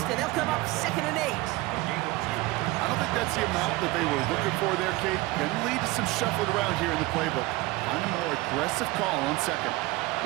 and they'll come up 2nd and 8. I don't think that's the amount that they were looking for there, Kate. Can lead to some shuffling around here in the playbook. Find a more aggressive call on 2nd.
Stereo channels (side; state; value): left; quieter; 20.4 dB